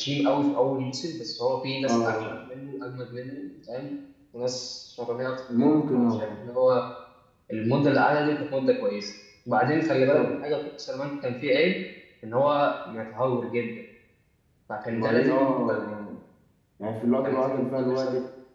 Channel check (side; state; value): both; identical; correlation 1.00